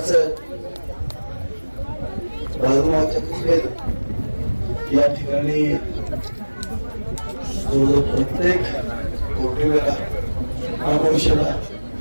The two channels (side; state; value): both; inverted; correlation -1.00